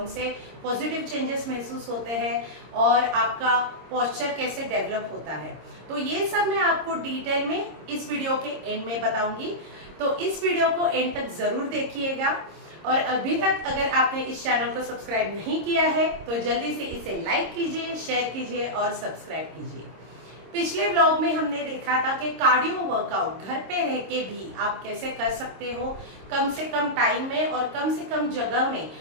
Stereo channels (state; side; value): late; left; 26 ms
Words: से पॉजिटिव चेंजेस महसूस होते हैं और आपका पोस्चर कैसे डेवलप होता है। तो ये सब मैं आपको डिटेल में इस वीडियो के एंड में बताऊंगी। तो इस वीडियो को एंड तक जरूर देखिएगा और अभी तक अगर आपने इस चैनल को सब्सक्राइब नहीं किया है तो जल्दी से इसे लाइक कीजिए, शेयर कीजिए और सब्सक्राइब कीजिए। पिछले व्लॉग में हमने देखा था कि कार्डियो वर्कआउट घर पे रह के भी आप कैसे कर सकते हो, कम से कम टाइम में और कम से कम जगह में